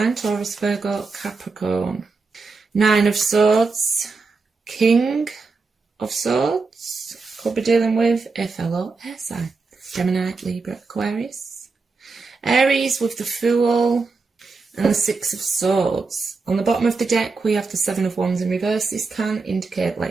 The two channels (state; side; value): quieter; left; 4.2 dB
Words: Taurus, Virgo, Capricorn. Nine of Swords. King of Swords. Could be dealing with a fellow air sign. Gemini, Libra, Aquarius. Aries with the Fool. And the Six of Swords. On the bottom of the deck, we have the Seven of Wands in reverse. This can indicate